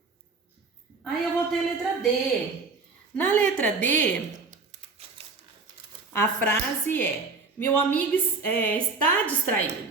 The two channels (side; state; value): left; quieter; 4.2 dB